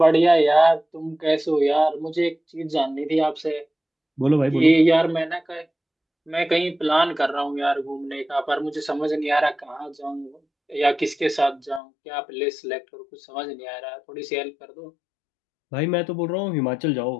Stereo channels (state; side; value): drops out; right; at 11.8 s